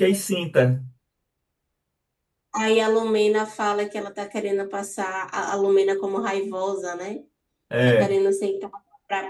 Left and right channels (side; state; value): both; identical; correlation 1.00